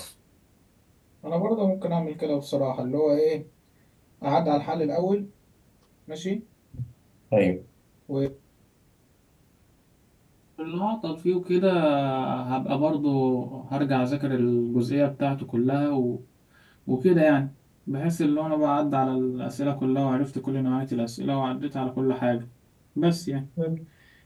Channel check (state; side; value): identical; both; correlation 1.00